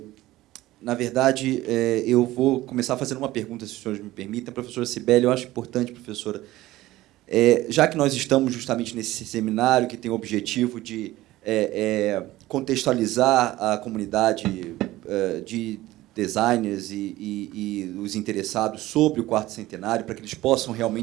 na verdade, eu vou começar fazendo uma pergunta, se os senhores me permitem. Professora Cibele, eu acho importante, professora, já que nós estamos justamente nesse seminário que tem o objetivo de contextualizar a comunidade de designers e os interessados sobre o 4º centenário, para que eles possam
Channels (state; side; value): quieter; left; 16.8 dB